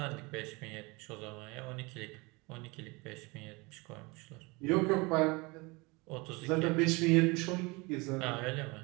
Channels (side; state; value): left; quieter; 26.1 dB